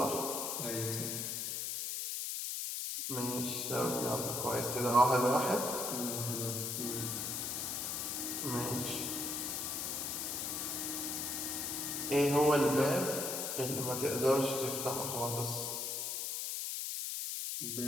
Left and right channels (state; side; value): noise; left; hiss, 2 dB below the sound